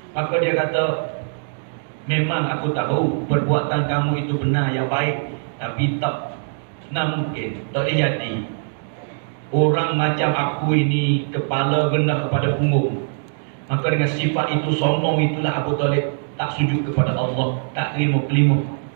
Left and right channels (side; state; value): left; silent; digital silence